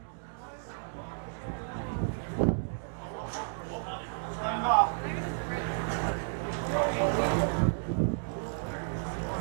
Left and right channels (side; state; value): left; silent; digital silence